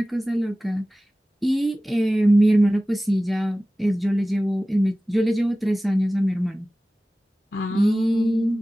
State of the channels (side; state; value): both; normal; correlation 0.97